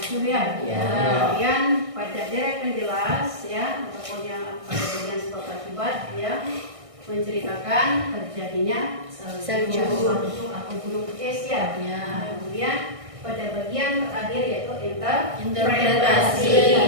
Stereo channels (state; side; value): late; left; 1.6 ms